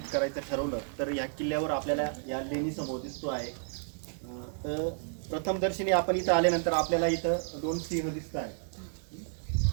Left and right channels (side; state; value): left; silent; 57 dB below the other